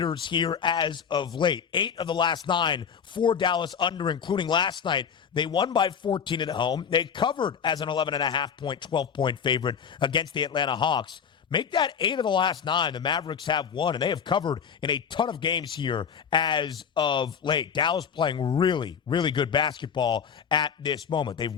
here as of late. 8 of the last 9 for Dallas under, including last night. They won by 14 at home. They covered as an 11.5-point, 12-point favorite against the Atlanta Hawks. Make that 8 of the last 9. The Mavericks have won, and they have covered in a ton of games here as of late. Dallas playing really, really good basketball at this moment. They've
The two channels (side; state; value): right; quieter; 7.2 dB